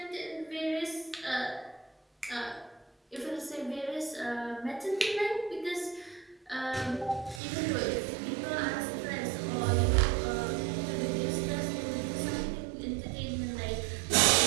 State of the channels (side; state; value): left; drops out; at 7.4 s